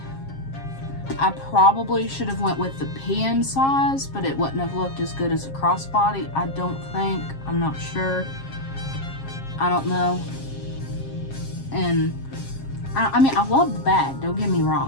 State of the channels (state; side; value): late; right; 7.4 ms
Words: I probably should have went with the PM size, but it wouldn't have looked as good as a crossbody, I don't think. I'm not sure. I don't know. And I mean, I love the bag, don't get me